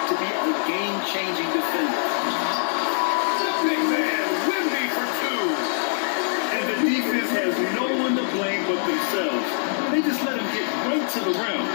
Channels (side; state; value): right; silent; digital silence